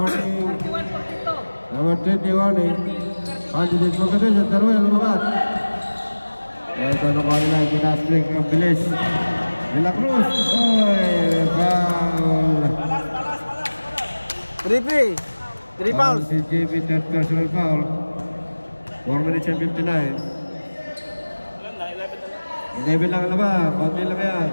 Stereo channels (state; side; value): inverted; both; correlation -1.00